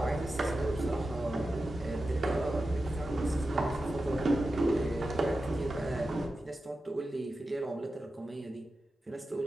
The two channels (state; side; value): normal; both; correlation 0.92